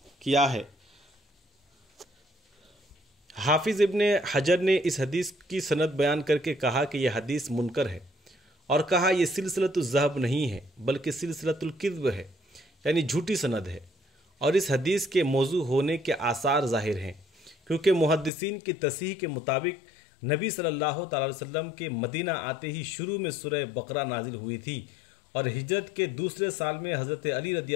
کیا ہے۔ حافظ ابن حجر نے اس حدیث کی سند بیان کر کے کہا کہ یہ حدیث منکر ہے، اور کہا یہ سلسلۃ الذہب نہیں ہے بلکہ سلسلۃ الکذب ہے، یعنی جھوٹی سند ہے، اور اس حدیث کے موضوع ہونے کے آثار ظاہر ہیں، کیونکہ محدثین کی تصحیح کے مطابق نبی صلی اللہ تعالی وسلم کے مدینہ آتے ہی شروع میں سورہ بقرہ نازل ہوئی تھی، اور ہجرت کے دوسرے سال میں حضرت علی رضی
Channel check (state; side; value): drops out; right; at 18.3 s